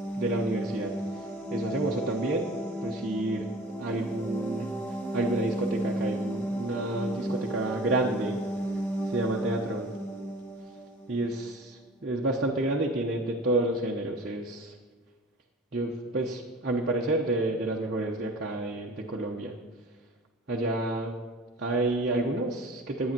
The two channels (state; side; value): normal; both; correlation 0.43